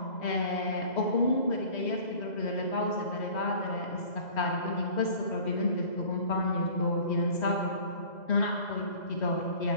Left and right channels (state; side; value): late; right; 2.0 ms